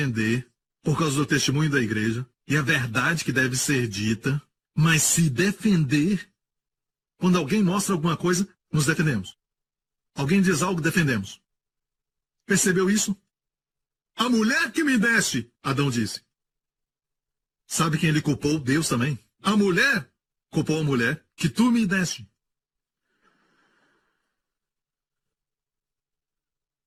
por causa do testemunho da igreja e a verdade que deve ser dita, mas se defender, quando alguém mostra alguma coisa, nos defendemos. Alguém diz algo, defendemos. Percebeu isso? A mulher que me deste, Adão disse. Sabe quem ele culpou? Deus também. A mulher culpou a mulher que tu me deste.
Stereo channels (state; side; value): identical; both; correlation 1.00